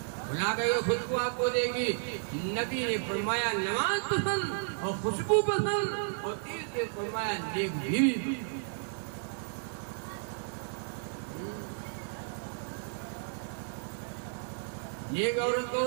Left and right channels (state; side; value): silent; left; digital silence